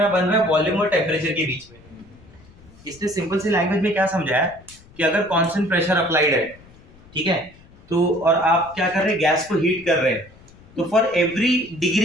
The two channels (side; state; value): left; noise; rumble, 25 dB below the sound